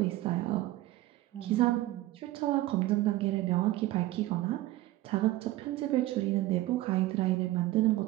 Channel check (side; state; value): left; quieter; 16.7 dB